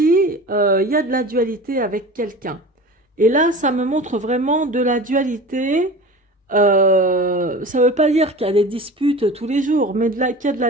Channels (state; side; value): normal; both; correlation 0.35